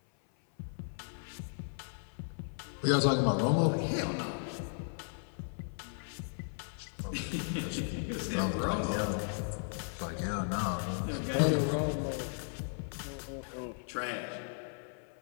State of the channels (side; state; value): right; silent; 54 dB below the other